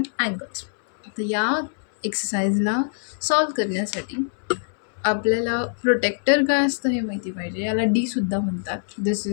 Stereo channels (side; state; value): right; silent; 63 dB below the other